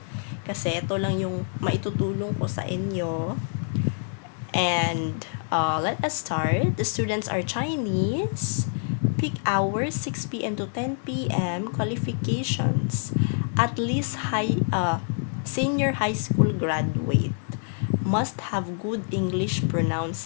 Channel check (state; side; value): silent; right; digital silence